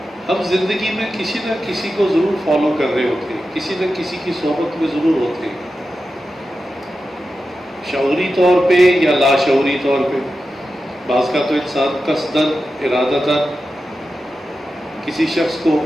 ہم زندگی میں کسی نہ کسی کو ضرور فالو کر رہے ہوتے ہیں، کسی نہ کسی کی صحبت میں ضرور ہوتے ہیں، شعوری طور پہ یا لاشعوری طور پہ۔ بعض کا تو انسان قصداً ارادتاً کسی شخص کو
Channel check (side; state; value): both; normal; correlation 0.91